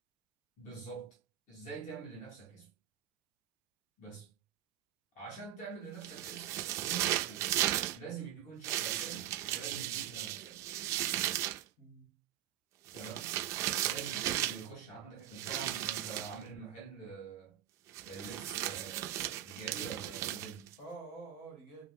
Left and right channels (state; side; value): quieter; left; 11.5 dB